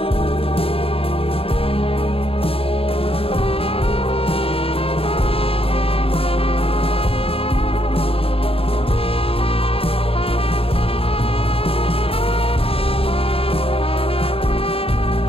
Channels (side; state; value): right; late; 0.27 ms